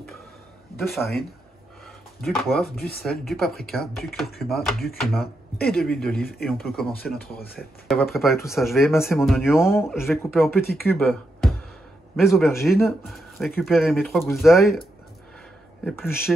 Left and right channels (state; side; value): normal; both; correlation 0.83